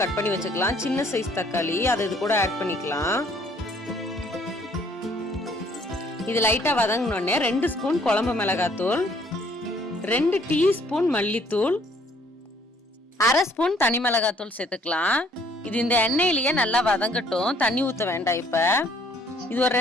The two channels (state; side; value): normal; both; correlation 0.61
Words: கட் பண்ணி வச்சுக்கலாம். சின்ன சைஸ் தக்காளி, அதை இது கூட ஆட் பண்ணிக்கலாம். இது லைட்டா வதங்கினோடனே 2 ஸ்பூன் குழம்பு மிளகாத்தூள், 2 டீஸ்பூன் மல்லித்தூள், 1/2 ஸ்பூன் தனி மிளகாத்தூள் சேர்த்துக்கலாம். இது இந்த எண்ணெயிலேயே நல்லா வதங்கட்டும். தண்ணி ஊத்த வேண்டாம். இப்ப இது ஒரு